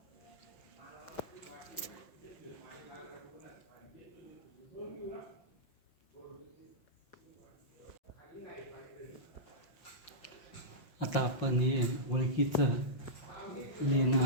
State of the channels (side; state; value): right; late; 5.6 ms